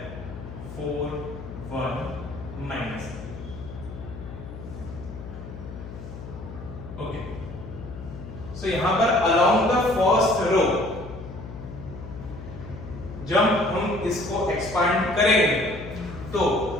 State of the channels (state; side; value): noise; left; hum, 11 dB below the sound